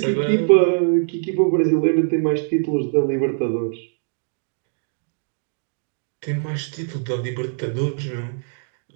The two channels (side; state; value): left; silent; digital silence